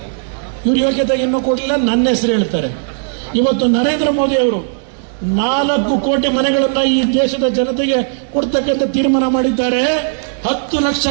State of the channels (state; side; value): silent; left; digital silence